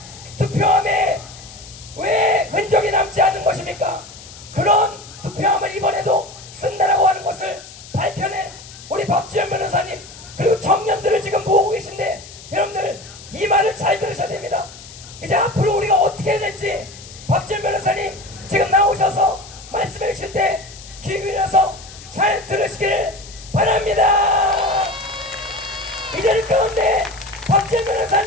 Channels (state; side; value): noise; left; hiss, 17 dB below the sound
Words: 투표함에 왜 흔적이 남지 않은 것입니까? 그런 투표함을 이번에도 쓴다라고 하는 것을 밝혀낸 우리 박주현 변호사님, 그리고 청년들을 지금 모으고 계신데, 여러분들 이 말을 잘 들으셔야 됩니다. 이제 앞으로 우리가 어떻게 해야 될지 박지원 변호사님 지금 나오셔서 말씀해 주실 때 귀 기울여서 잘 들으시길 바랍니다. 이 자리 가운데 박지원